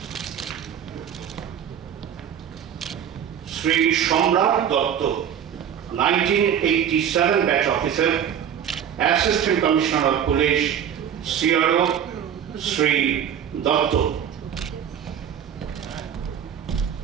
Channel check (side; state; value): left; quieter; 8.9 dB